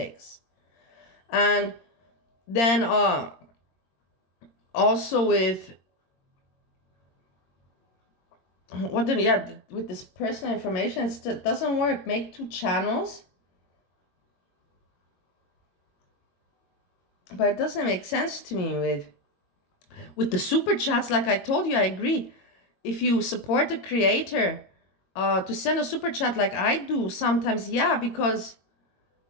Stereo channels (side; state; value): right; late; 22 ms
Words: And then also with with this personal information, it doesn't work. Make two channels. But it doesn't make sense to me with the super chats. Like I told you, I agree. If you support the creator, to send a super chat like I do sometimes, yeah, because